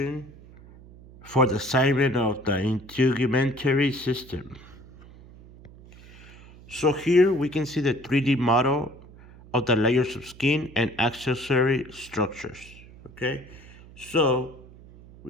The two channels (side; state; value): right; noise; hum, 21 dB below the sound